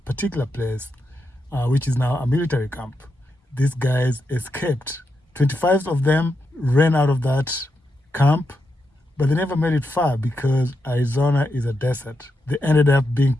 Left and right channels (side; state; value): both; normal; correlation 0.85